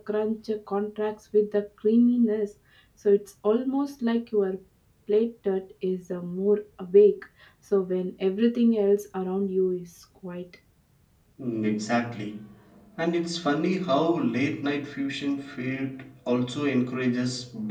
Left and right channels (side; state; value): both; identical; correlation 1.00